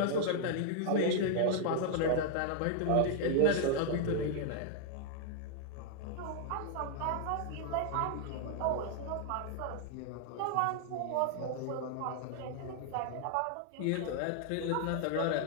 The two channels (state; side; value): different; both; correlation 0.00